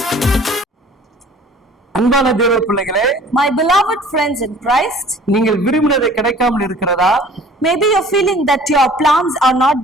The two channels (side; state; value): both; normal; correlation 0.49